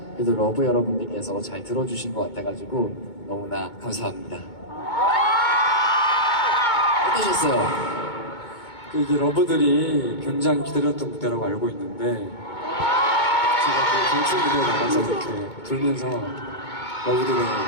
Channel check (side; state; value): right; late; 2.2 ms